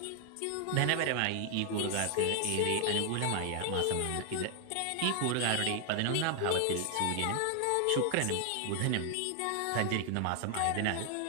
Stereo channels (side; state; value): both; different; correlation 0.00